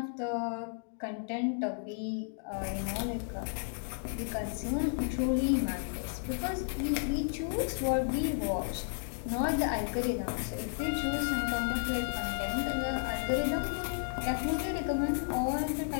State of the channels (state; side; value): silent; right; digital silence